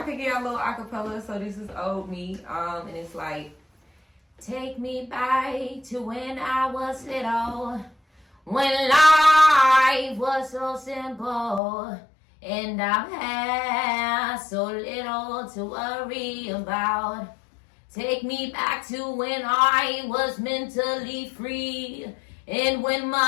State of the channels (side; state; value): right; drops out; at 11.6 s